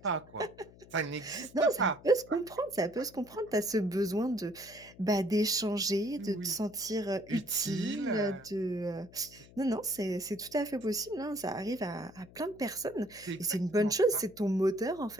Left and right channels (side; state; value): left; noise; hum, 22 dB below the sound